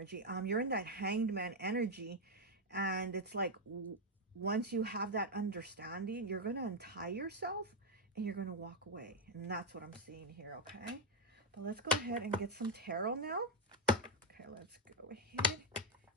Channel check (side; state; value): both; normal; correlation 0.02